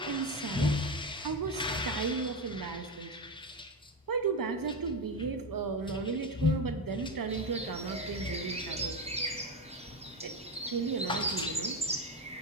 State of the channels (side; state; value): both; normal; correlation 0.14